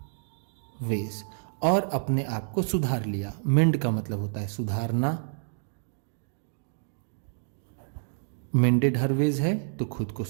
ways और अपने आप को सुधार लिया। मेंड का मतलब होता है सुधारना। मेंडेड हर वेज है तो खुद को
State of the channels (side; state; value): left; silent; digital silence